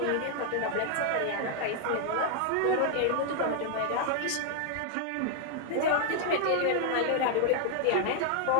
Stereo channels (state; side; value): different; both; correlation 0.00